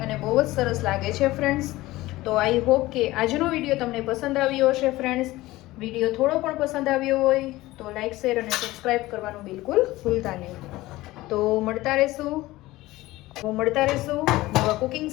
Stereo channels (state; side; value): quieter; right; 18.2 dB